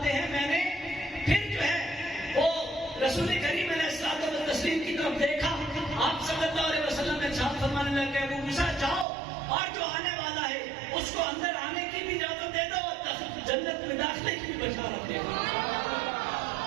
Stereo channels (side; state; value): left; drops out; at 9.1 s